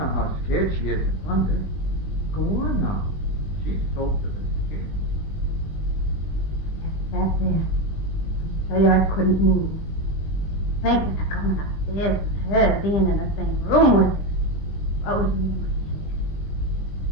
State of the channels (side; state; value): right; late; 20 ms